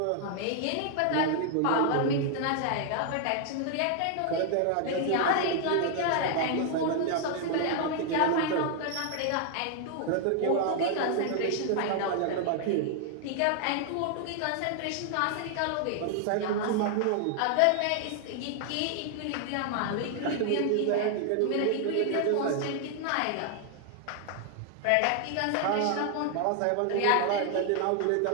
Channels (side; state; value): both; different; correlation 0.00